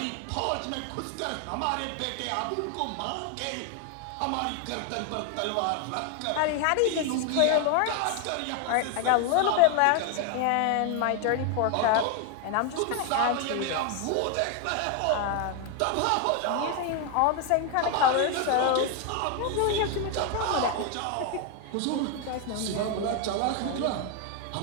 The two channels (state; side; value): different; both; correlation 0.01